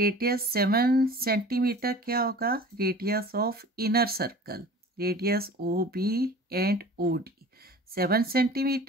7 सेंटीमीटर क्या होगा? Radius of inner circle, radius O B and O D 7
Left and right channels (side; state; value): both; normal; correlation 0.42